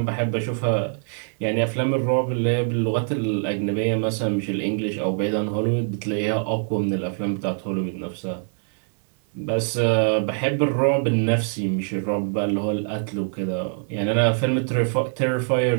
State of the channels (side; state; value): left; silent; 63 dB below the other